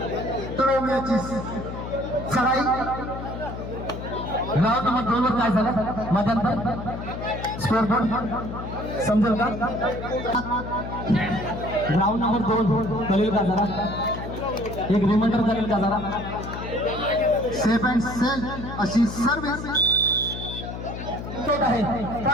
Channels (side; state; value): left; noise; hum, 8 dB below the sound